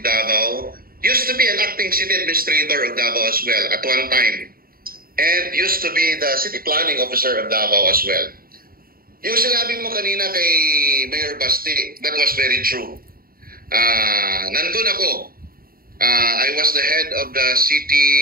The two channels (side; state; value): left; late; 0.43 ms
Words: Davao, used to be an acting city administrator of Davao as well at one time, and used to be the city planning officer of Davao as well. Yung sinabi mo kanina kay Mayor Basti, that was very true. Nandun ako. I was the head of the